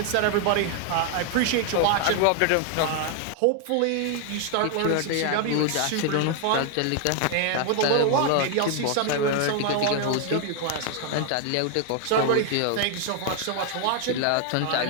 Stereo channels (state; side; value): different; both; correlation 0.00